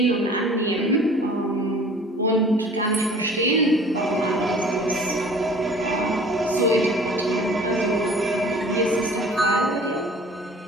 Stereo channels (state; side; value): normal; both; correlation 0.48